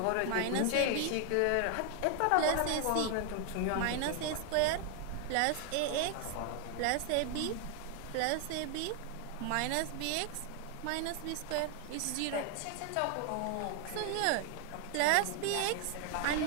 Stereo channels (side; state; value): both; different; correlation 0.00